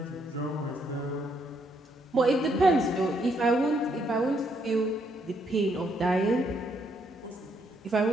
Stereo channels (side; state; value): both; normal; correlation 0.73